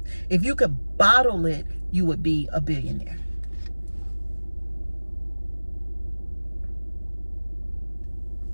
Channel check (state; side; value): inverted; both; correlation -1.00